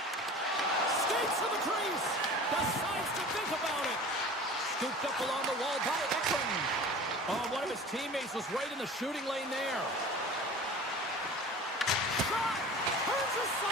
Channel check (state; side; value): normal; both; correlation 0.39